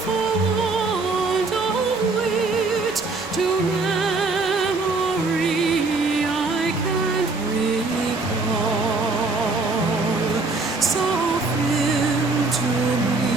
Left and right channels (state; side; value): quieter; left; 3.7 dB